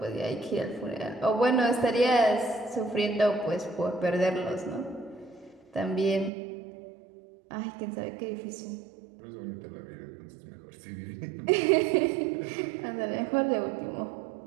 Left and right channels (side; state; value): left; drops out; at 6.3 s